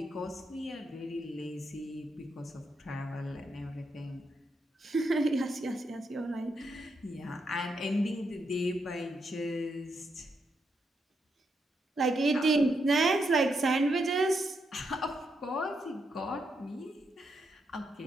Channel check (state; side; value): normal; both; correlation 0.81